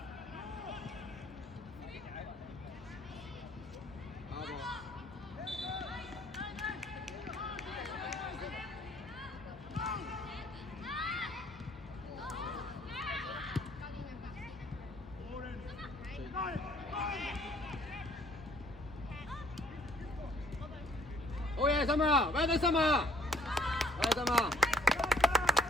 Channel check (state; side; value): normal; both; correlation 0.60